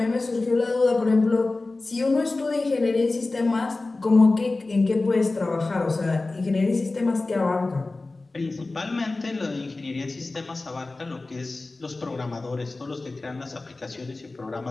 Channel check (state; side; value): quieter; right; 3.3 dB